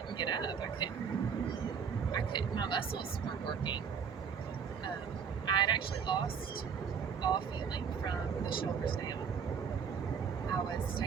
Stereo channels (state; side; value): quieter; left; 6.8 dB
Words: get up. I couldn't. My muscles weren't working. I had actually lost all feeling from the shoulders down. I was